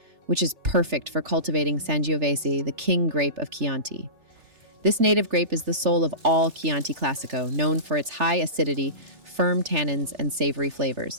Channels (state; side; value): late; left; 3.4 ms